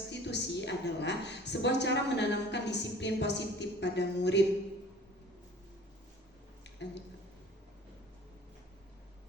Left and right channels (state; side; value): normal; both; correlation 0.48